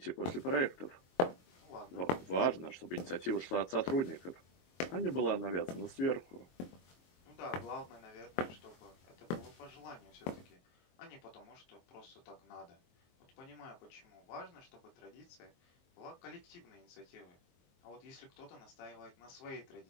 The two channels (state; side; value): late; right; 23 ms